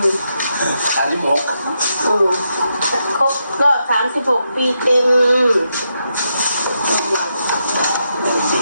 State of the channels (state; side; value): inverted; both; correlation -0.83